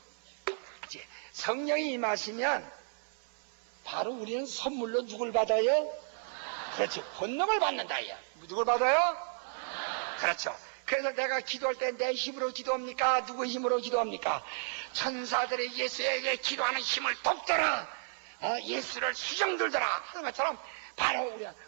이제 성령이 임하시면 바로 우리는 선물로 누굴 받아요? 그렇죠. 권능을 받는다, 야. 누굴 받아요? 그렇죠. 그래서 내가 기도할 때 내 힘으로 기도합니까? 누구 힘으로 기도합니까? 천사들이 예수에게 기도하는 힘을 돕더라. 예수를 수정들더라. 하는 것처럼 바로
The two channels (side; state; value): left; silent; 56 dB below the other